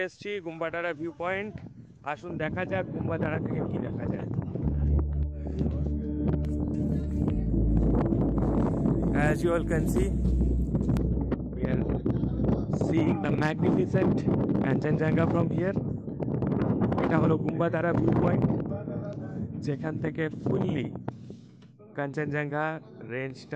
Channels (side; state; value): both; identical; correlation 1.00